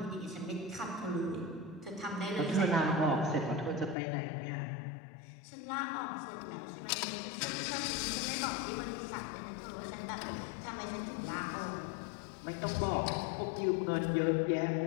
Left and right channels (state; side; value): drops out; right; at 4.0 s